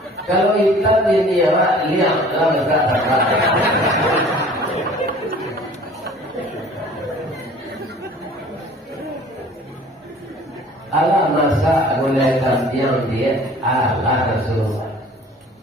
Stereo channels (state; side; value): normal; both; correlation 0.48